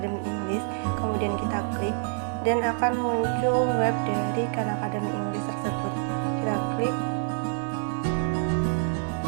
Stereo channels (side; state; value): left; silent; 60 dB below the other